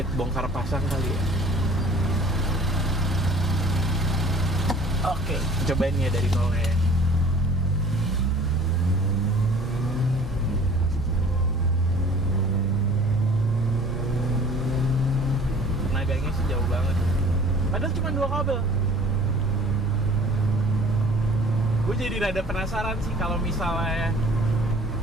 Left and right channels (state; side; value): normal; both; correlation 0.49